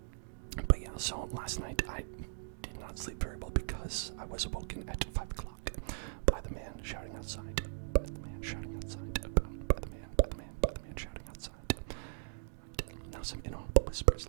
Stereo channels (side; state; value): left; silent; digital silence